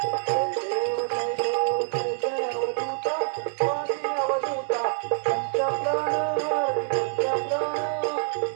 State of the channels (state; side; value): silent; left; 61 dB below the other